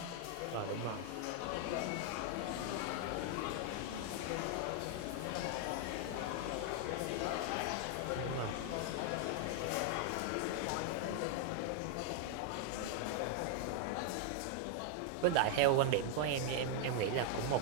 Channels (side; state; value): both; different; correlation 0.00